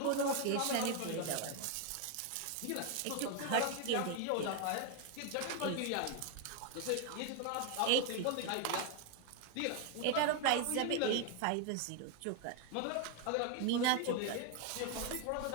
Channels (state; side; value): different; both; correlation 0.01